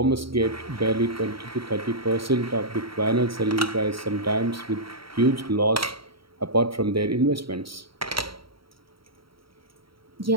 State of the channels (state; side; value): late; left; 0.75 ms